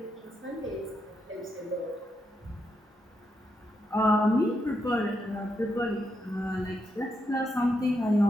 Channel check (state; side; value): normal; both; correlation 0.82